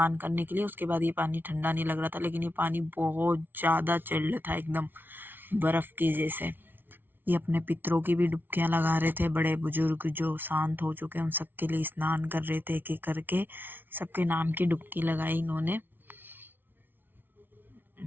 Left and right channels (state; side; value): late; left; 0.097 ms